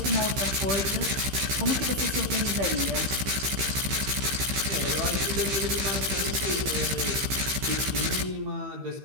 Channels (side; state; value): left; late; 15 ms